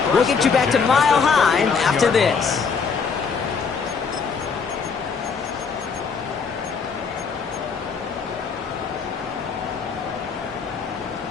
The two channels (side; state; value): right; quieter; 5.5 dB